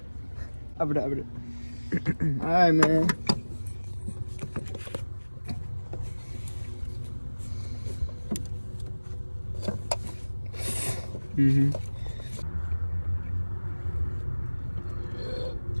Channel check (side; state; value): both; inverted; correlation -1.00